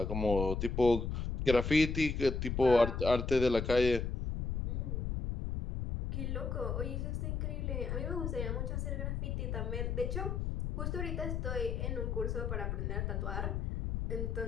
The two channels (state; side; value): noise; left; rumble, 2 dB below the sound